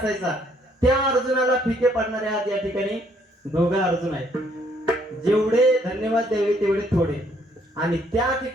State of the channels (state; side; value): normal; both; correlation 0.67